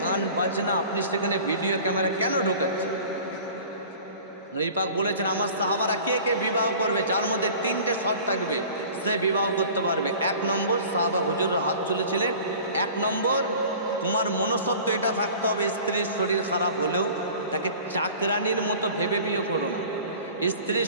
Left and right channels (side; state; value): both; inverted; correlation -0.43